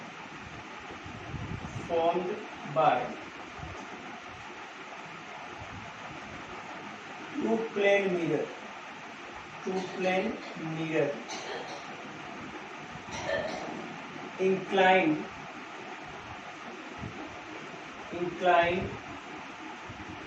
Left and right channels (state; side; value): identical; both; correlation 1.00